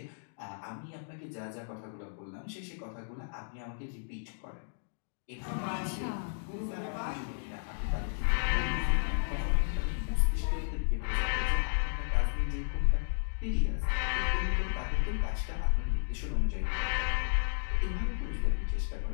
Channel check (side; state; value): right; silent; digital silence